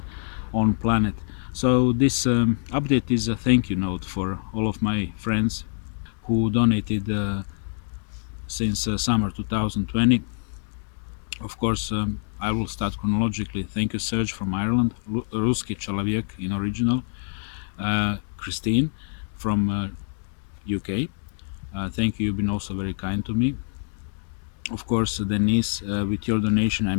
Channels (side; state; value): right; silent; digital silence